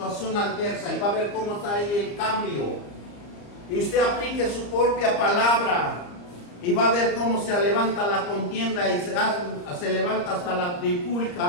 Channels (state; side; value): late; right; 34 ms